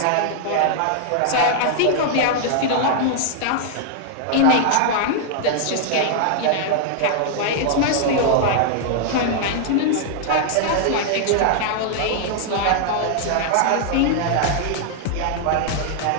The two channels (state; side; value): different; both; correlation -0.01